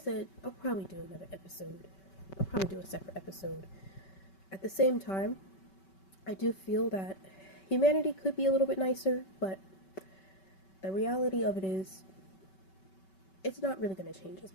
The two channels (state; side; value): late; right; 5.2 ms